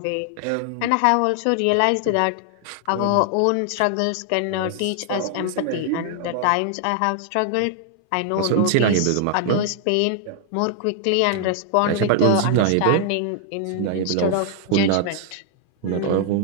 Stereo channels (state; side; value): different; both; correlation 0.00